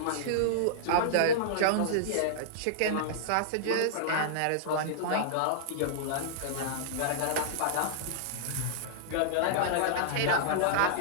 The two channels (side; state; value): both; different; correlation -0.02